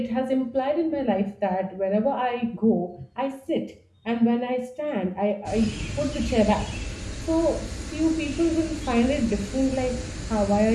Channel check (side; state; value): both; identical; correlation 1.00